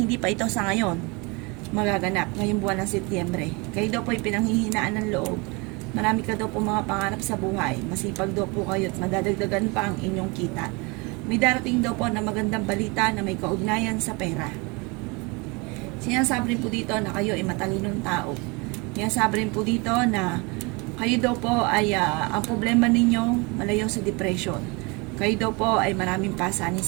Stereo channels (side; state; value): left; quieter; 28.1 dB